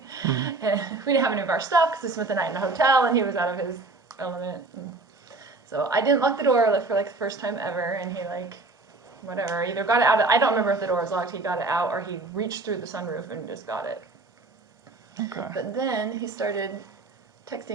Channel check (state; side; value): quieter; left; 3.3 dB